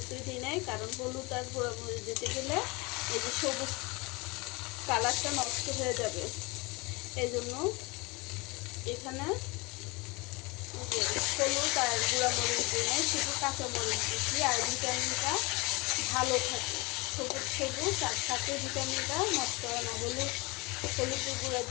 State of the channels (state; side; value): quieter; right; 25.9 dB